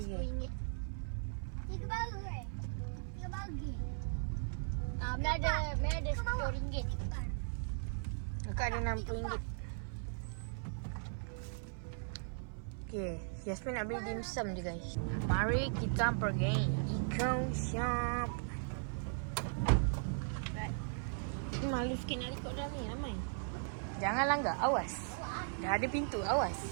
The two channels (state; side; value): silent; left; 52 dB below the other